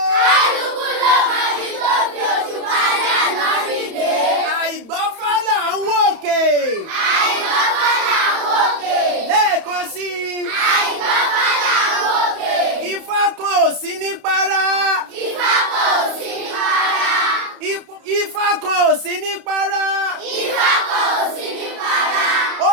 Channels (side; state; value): left; late; 31 ms